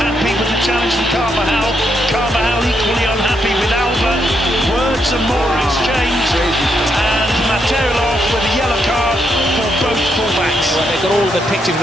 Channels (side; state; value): both; normal; correlation 0.79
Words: Happy with the challenge from Carvajal. Carvajal equally unhappy with Alba. Words and more exchanged. And Materilov with a yellow card for both fullbacks. Well, they've got all the pictures of